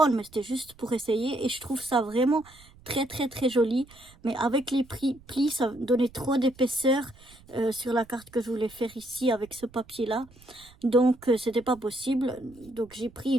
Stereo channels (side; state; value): right; noise; rumble, 25 dB below the sound